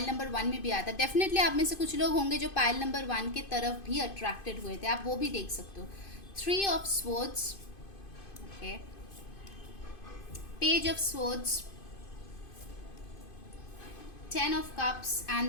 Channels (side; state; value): right; late; 2.5 ms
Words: नंबर 1 में भी आता है। डेफिनेटली आप में से कुछ लोग होंगे जो पाइल नंबर 1 की तरफ भी अट्रैक्टेड हुए थे, आप वो भी देख सकते हो। 3 of swords, okay, page of swords, 10 of cups,